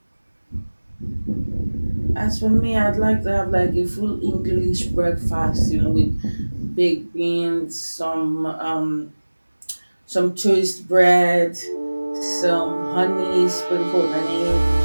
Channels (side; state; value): both; inverted; correlation -1.00